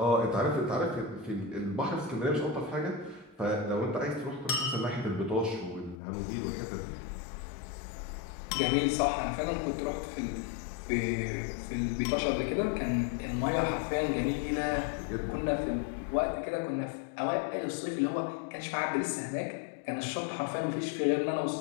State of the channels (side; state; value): right; drops out; at 6.0 s